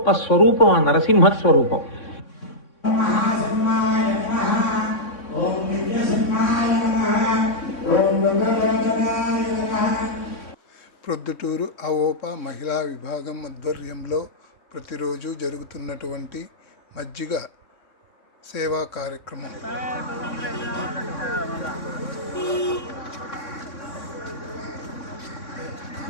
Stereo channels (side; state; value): right; late; 3.6 ms